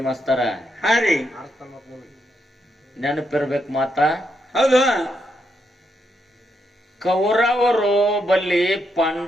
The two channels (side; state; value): both; normal; correlation 0.80